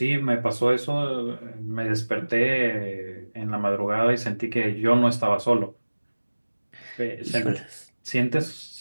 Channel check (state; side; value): inverted; both; correlation -1.00